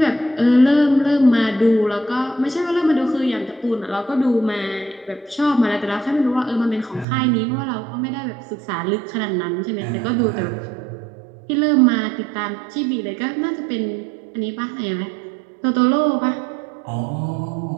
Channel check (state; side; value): drops out; left; at 7.1 s